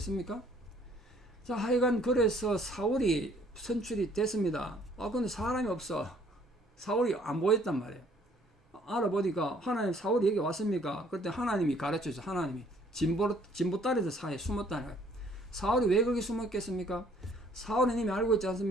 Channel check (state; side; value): normal; both; correlation 0.61